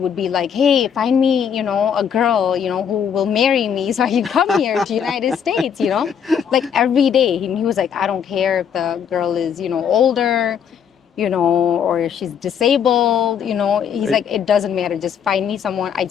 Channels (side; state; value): right; quieter; 7.8 dB